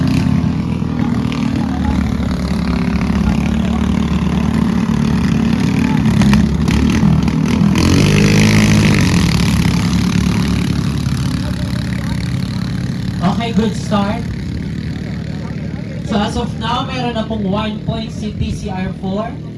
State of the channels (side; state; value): both; identical; correlation 1.00